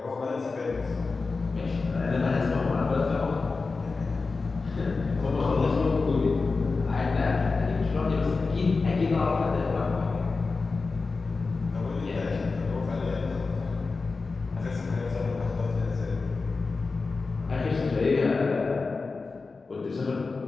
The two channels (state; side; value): quieter; right; 4.1 dB